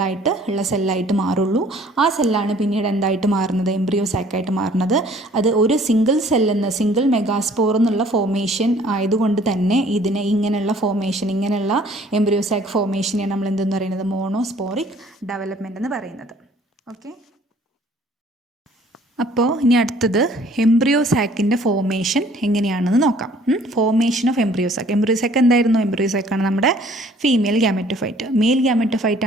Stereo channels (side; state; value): both; normal; correlation 0.56